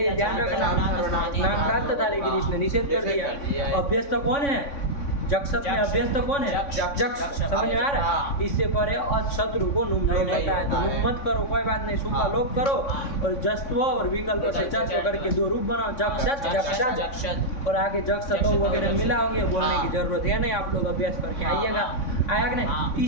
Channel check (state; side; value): late; right; 3.6 ms